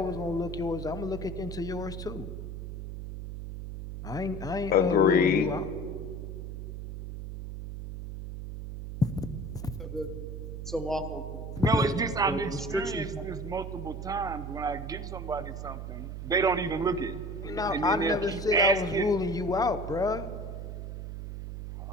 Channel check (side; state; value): right; noise; hum, 7 dB below the sound